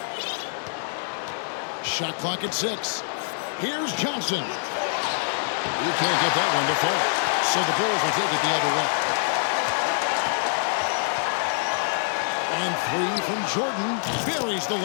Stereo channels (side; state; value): right; silent; digital silence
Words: Shot clock at 6. Here's Johnson. He can't get that one to fall. So the Bulls will take it the other way. And 3 from Jordan. Buries the